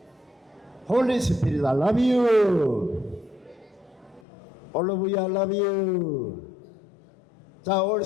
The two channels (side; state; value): right; drops out; at 4.2 s